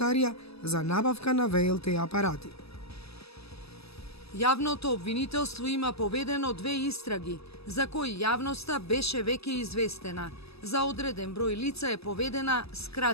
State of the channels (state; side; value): late; right; 0.78 ms